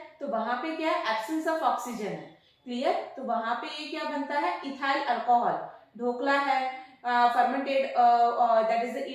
तो वहां पे क्या है? एब्सेंस ऑफ ऑक्सीजन है. क्लियर? तो वहां पे ये क्या बनता है? Ethyl alcohol. ढोकला है, fermented that is the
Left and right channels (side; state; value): both; identical; correlation 1.00